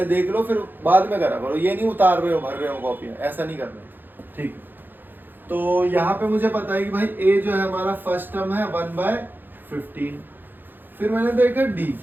देख लो फिर बाद में करा करो। ये नहीं उतार रहे हो भर रहे हो कॉपियाँ, ऐसा नहीं करना, ठीक है। तो यहाँ पे मुझे पता है कि भाई ए जो है हमारा फर्स्ट टर्म है 1/15। फिर मैंने देखा डी।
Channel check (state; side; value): late; left; 0.092 ms